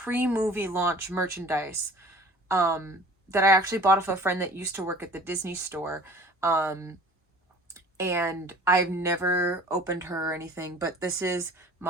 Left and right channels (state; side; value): normal; both; correlation 0.46